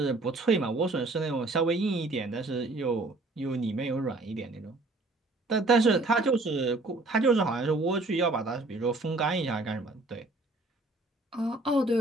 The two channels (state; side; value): quieter; left; 3.0 dB